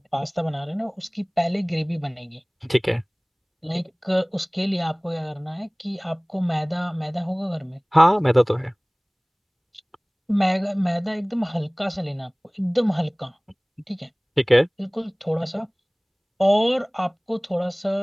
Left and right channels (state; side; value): identical; both; correlation 1.00